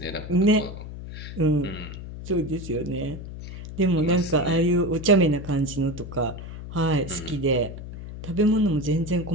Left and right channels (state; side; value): noise; left; hum, 11 dB below the sound